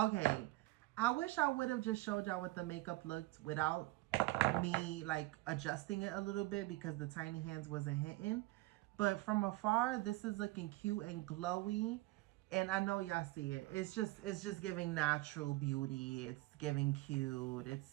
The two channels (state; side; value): quieter; left; 20.0 dB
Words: I wish I would have just showed y'all what the makeup looked without me like adjusting it a little bit, because the tiny hands wasn't hitting. But from afar, this is looking cute and glowy. And I know y'all see it. It's just giving natural beauty. It's giving cute.